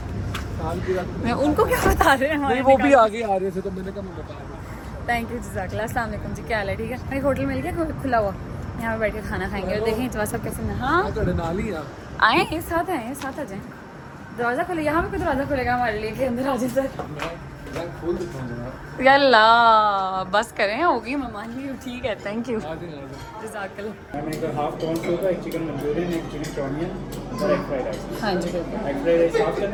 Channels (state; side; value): identical; both; correlation 1.00